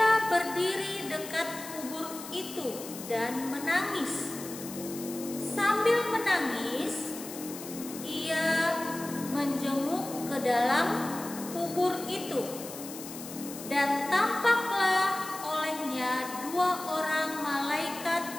berdiri dekat kubur itu dan menangis. Sambil menangis, ia menjenguk ke dalam kubur itu, dan tampaklah olehnya 2 orang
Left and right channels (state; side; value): noise; left; hiss, 12 dB below the sound